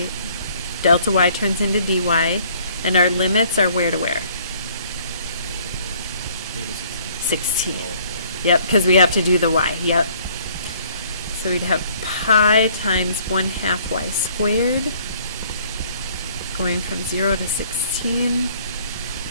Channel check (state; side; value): inverted; both; correlation -0.59